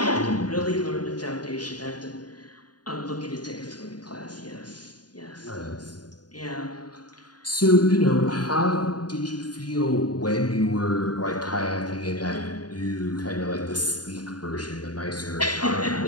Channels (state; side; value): late; right; 0.69 ms